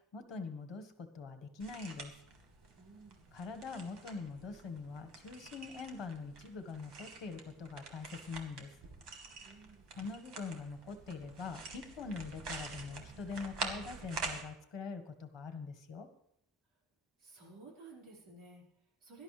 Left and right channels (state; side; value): normal; both; correlation 0.48